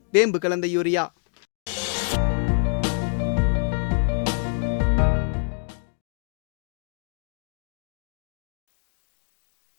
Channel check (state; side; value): silent; right; 61 dB below the other